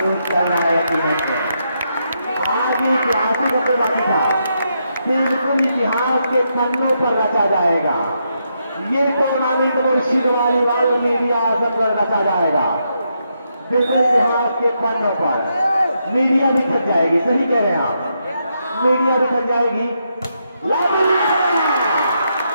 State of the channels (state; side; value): inverted; both; correlation -0.80